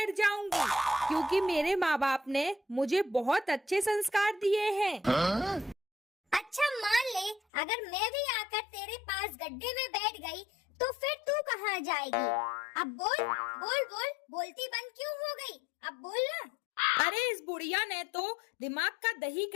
जाऊंगी, क्योंकि मेरे माँ बाप ने मुझे बहुत अच्छे संस्कार दिए हैं। अच्छा, मान ले अगर मैं भी आकर तेरे पास गड्ढे में बैठ गई, तो फिर तू कहाँ जाएगी? अब बोल बोल बोल, बोलती बंद क्यों हो गई? अब बोल ना। अरे इस बुढ़िया ने तो दिमाग का दही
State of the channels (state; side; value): drops out; right; at 7.4 s